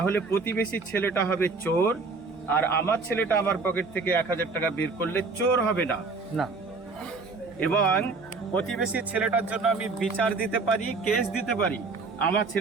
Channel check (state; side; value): quieter; left; 4.1 dB